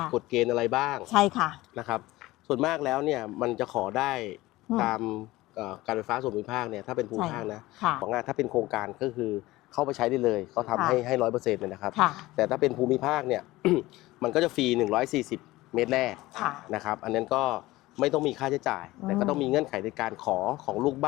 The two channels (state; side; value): quieter; right; 18.5 dB